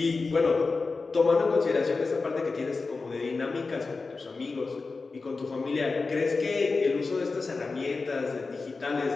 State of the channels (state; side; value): quieter; right; 4.0 dB